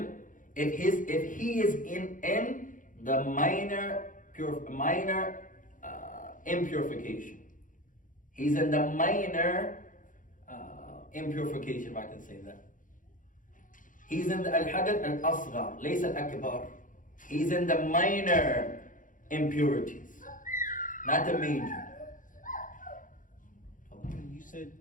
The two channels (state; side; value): late; right; 0.38 ms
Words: if he is in the minor impurification. He's in the minor impurification, if I can say that. He's in the al-hadath al-asghar, laysa al-akbar. He's in the minor impurities, not the major. You said